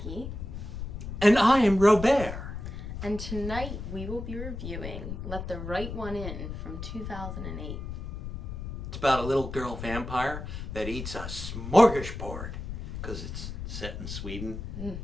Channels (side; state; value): left; noise; rumble, 7 dB below the sound